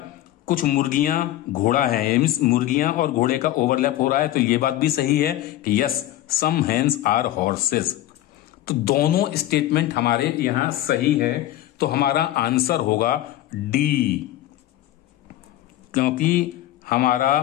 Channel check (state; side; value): quieter; right; 14.2 dB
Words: कुछ मुर्गियां घोड़ा है, मीन्स मुर्गियां और घोड़े का ओवरलैप हो रहा है, तो ये बात भी सही है कि yes some hens are horses. तो दोनों स्टेटमेंट हमारे यहां सही है, तो हमारा आंसर होगा डी, क्योंकि हमारा